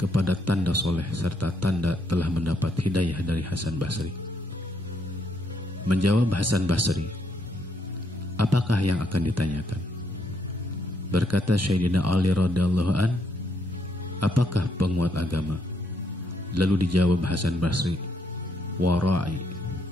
tanda soleh serta tanda telah mendapat hidayah dari Hasan Basri. Menjawab Hasan Basri, "Apakah yang akan ditanyakan?" Berkata Sayyidina Ali radhiyallahu an, "Apakah penguat agama?" Lalu dijawab Hasan Basri, "Wara'i."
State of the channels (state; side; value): normal; both; correlation 0.74